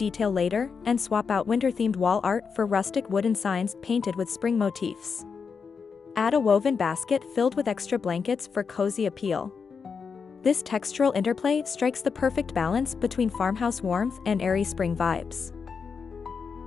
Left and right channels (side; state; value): right; quieter; 5.7 dB